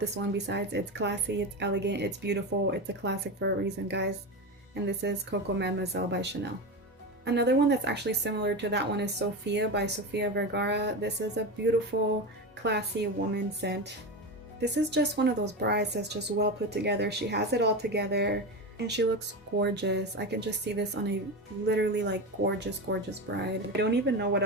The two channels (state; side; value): normal; both; correlation 0.20